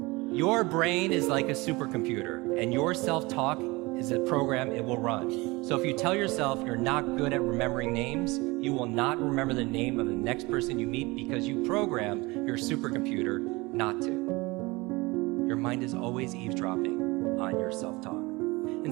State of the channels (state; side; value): quieter; left; 23.4 dB